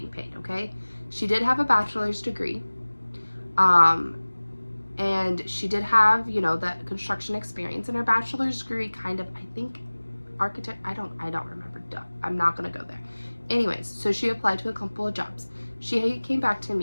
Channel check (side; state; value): both; inverted; correlation -1.00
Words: paid, okay? She did have a bachelor's degree. And she did have, you know, that construction experience. And her bachelor's degree kind of, I think, architect, I don't remember. Duh, I'm not going to go there. Anyways, so she applied to a couple of jobs. She came back to